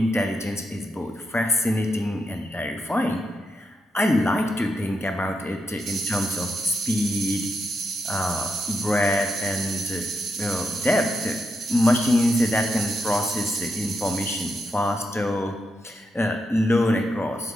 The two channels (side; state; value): both; normal; correlation 0.83